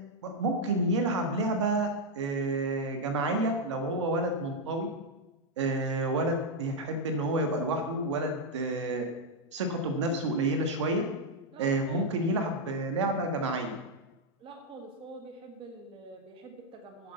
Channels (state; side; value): normal; both; correlation 0.00